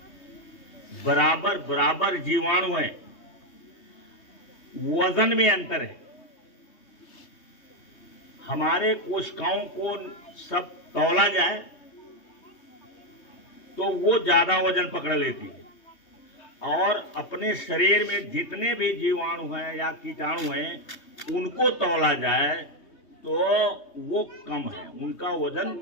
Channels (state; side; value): late; right; 3.2 ms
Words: बराबर बराबर जीवाणु है। वजन में अंतर है। हमारे कोशिकाओं को सब तौला जाए तो वो ज्यादा वजन पकड़ लेती है, और अपने शरीर में जितने भी जीवाणु हैं या कीटाणु हैं, उनको तौला जाए तो वो कम है, उनका वजन